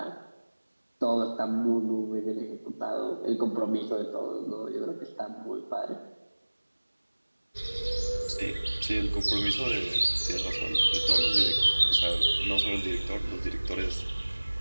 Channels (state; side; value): inverted; both; correlation -1.00